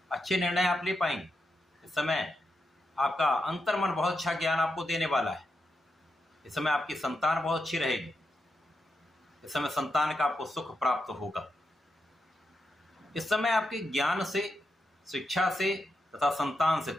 अच्छे निर्णय आप ले पाएंगे। इस समय आपका अंतर्मन बहुत अच्छा ज्ञान आपको देने वाला है। इस समय आपकी संतान बहुत अच्छी रहेगी। इस समय संतान का आपको सुख प्राप्त होगा। इस समय आपके ज्ञान से, शिक्षा से तथा संतान से,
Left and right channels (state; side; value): normal; both; correlation 0.85